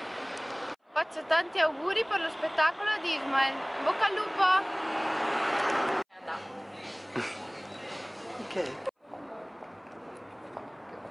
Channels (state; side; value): identical; both; correlation 1.00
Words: Faccio tanti auguri per lo spettacolo di Ismael. Bocca al lupo! Okay.